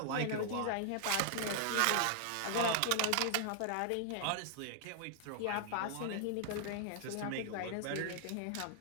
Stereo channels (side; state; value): both; different; correlation -0.01